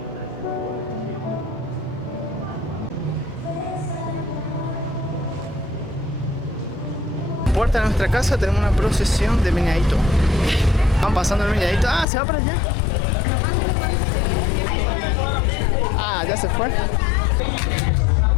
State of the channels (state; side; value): drops out; right; at 12.1 s